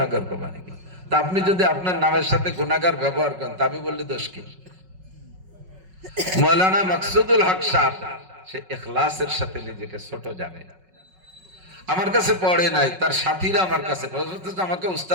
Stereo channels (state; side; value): late; left; 5.4 ms